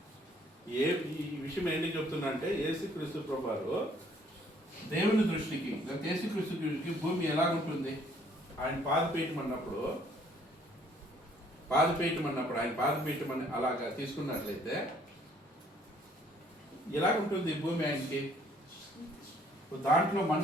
ఈ విషయం ఏంటి చెప్తున్నా అంటే యేసుక్రీస్తు ప్రభువారు దేవుని దృష్టికి, యేసుక్రీస్తు దృష్టికి భూమి ఎలాగుంటుంది? ఆయన పాదపీఠం అన్నప్పుడు ఆయన పాదపీఠం అని అలాగా తీసుకున్నట్లయితే ఎలాగుంటుంది భూమి ఆయనకి? దాంట్లో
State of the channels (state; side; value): normal; both; correlation 0.62